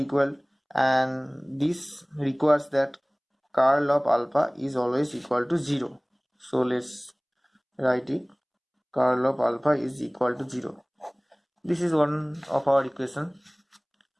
equal, and this requires that curl of alpha is always equal to 0. So let's write it, curl of alpha is equal to 0. This is one of our equation.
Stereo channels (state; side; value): identical; both; correlation 1.00